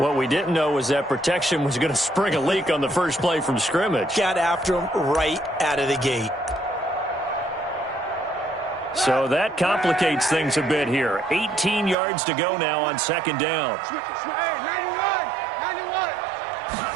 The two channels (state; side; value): drops out; left; at 12.0 s